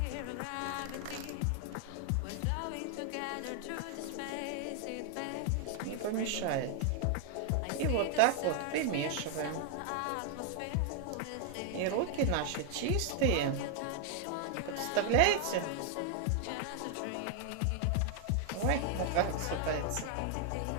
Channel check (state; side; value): different; both; correlation 0.00